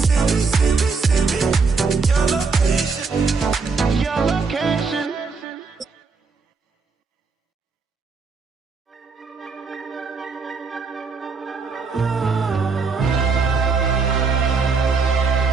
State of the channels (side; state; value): left; quieter; 4.7 dB